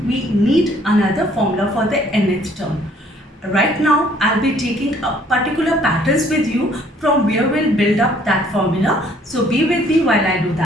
we need another formula for the nth term. Right now I'll be taking a particular patterns with you from where we'll build up that formula. So be with me while I do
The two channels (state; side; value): normal; both; correlation 0.61